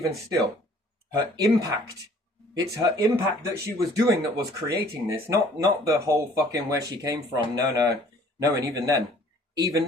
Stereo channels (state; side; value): normal; both; correlation 0.55